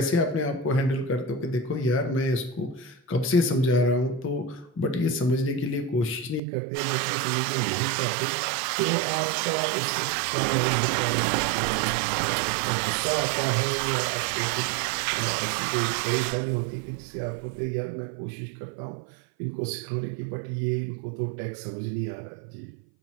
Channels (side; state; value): left; drops out; at 6.4 s